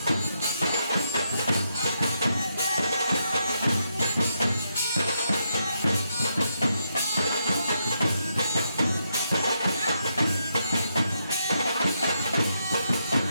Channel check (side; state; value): both; inverted; correlation -0.80